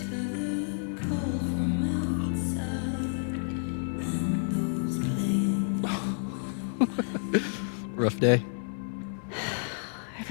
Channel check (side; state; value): right; silent; 58 dB below the other